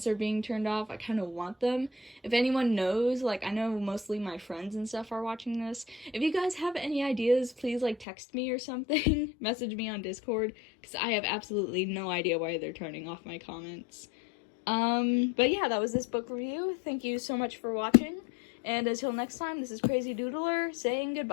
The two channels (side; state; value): right; drops out; at 8.1 s